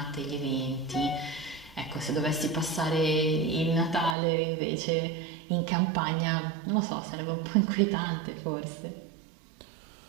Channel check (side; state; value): left; drops out; at 4.2 s